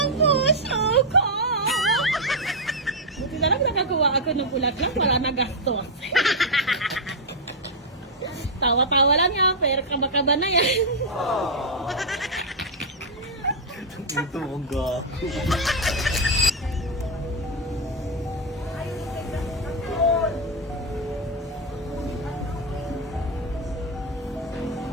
puso ko. Buti na lang nakakuha ako ng bulaklak. Wala na gastos. Tawa-tawa lang yan. Pero kaba-kaba na yan. Ito, ang gago.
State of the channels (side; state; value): both; normal; correlation 0.00